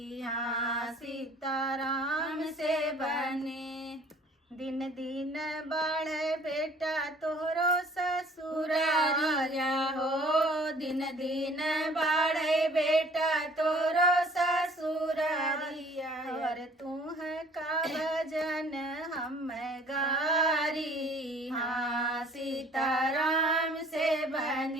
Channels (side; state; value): both; normal; correlation 0.53